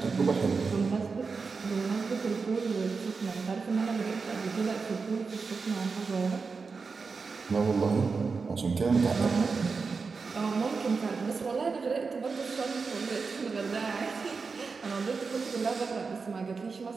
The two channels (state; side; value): quieter; left; 4.8 dB